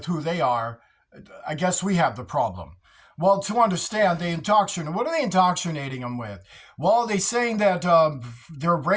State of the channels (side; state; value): both; identical; correlation 1.00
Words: who they are. I guess we have the problem. Well, to understand, they indoctrinate. What are they indoctrinating them with? Well, they're saying that their